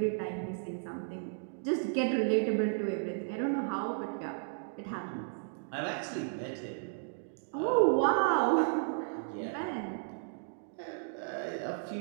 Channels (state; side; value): silent; left; digital silence